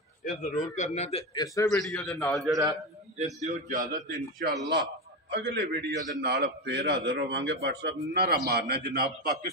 ਇਹ ਜ਼ਰੂਰ ਕਰਨਾ। ਤੇ ਇਸੇ ਵੀਡੀਓ ਦੇ ਨਾਲ ਜਿਹੜਾ ਇਹ ਦਿਓ ਇਜਾਜ਼ਤ, ਇਨਸ਼ਾਅੱਲਾ ਅਗਲੇ ਵੀਡੀਓ ਦੇ ਨਾਲ ਫੇਰ ਹਾਜ਼ਰ ਹੋਵਾਂਗੇ। WhatsApp ਨਾਰਾ ਮਾਰਨਾ ਜਨਾਬ,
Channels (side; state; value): both; normal; correlation 0.16